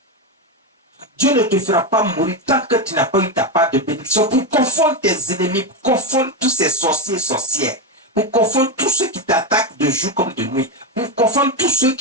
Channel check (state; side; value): normal; both; correlation 0.11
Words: Dieu ne te fera pas mourir tant que tu n'as pas eu ta part de bénédiction pour confondre tes ennemis, pour confondre tous ces sorciers et sorcières, pour confondre tous ceux qui t'attaquent de jour comme de nuit, pour confondre tous ceux